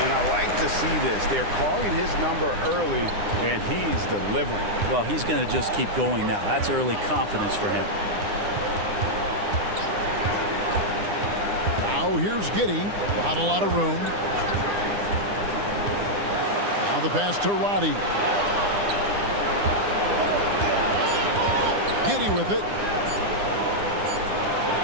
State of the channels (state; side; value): late; left; 9.9 ms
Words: And I like to see this. They're calling his number early, and he's delivering. Well, he's going to just keep going now. That's early confidence for him. Now here's Giddey. Not a lot of room. Now the pass to Roddy. Giddey with it.